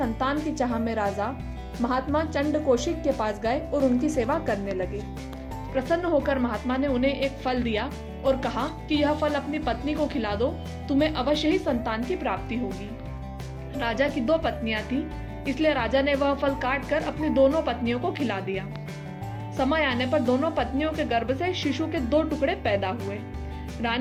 की चाह में राजा महात्मा चंड कौशिक के पास गए और उनकी सेवा करने लगे। प्रसन्न होकर महात्मा ने उन्हें एक फल दिया और कहा कि यह फल अपनी पत्नी को खिला दो, तुम्हें अवश्य ही संतान की प्राप्ति होगी। राजा की 2 पत्नियां थी, इसलिए राजा ने वह फल काट कर अपनी दोनों पत्नियों को खिला दिया। समय आने पर दोनों पत्नियों के गर्भ से शिशु के 2 टुकड़े पैदा हुए।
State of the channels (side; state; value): both; identical; correlation 1.00